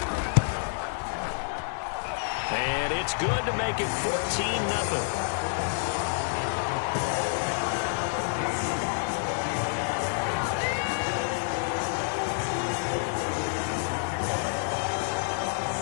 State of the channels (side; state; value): right; silent; digital silence